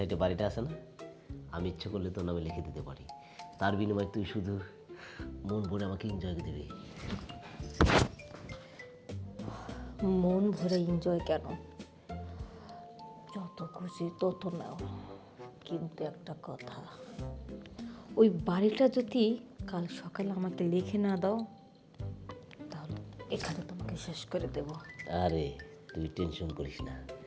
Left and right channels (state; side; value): identical; both; correlation 1.00